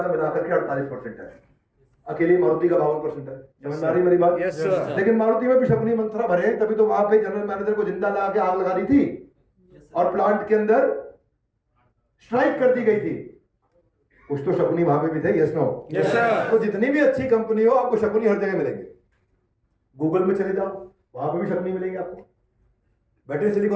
का मिलाकर के 48% है। अकेली मारुति का 52% है। समझ में आ रही मेरी बात? Yes sir. लेकिन मारुति में भी शकुनी मंत्रा भरे, तभी तो वहां पे जनरल मैनेजर को जिंदा लगा के आग लगा दी थी और प्लांट के अंदर स्ट्राइक कर दी गई थी। कुछ तो शकुनी वहां पे भी थे। Yes no? Yes sir. तो जितनी भी अच्छी कंपनी हो आपको शकुनी हर जगह मिलेंगे। गूगल में चले जाओ, वहां पे भी शकुनी मिलेंगे आपको। बैठे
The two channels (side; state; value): both; identical; correlation 1.00